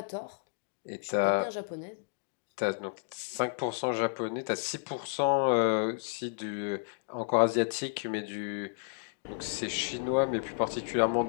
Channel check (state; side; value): silent; right; digital silence